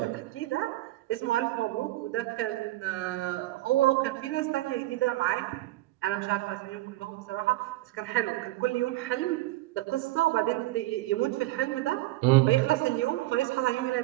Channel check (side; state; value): left; quieter; 17.5 dB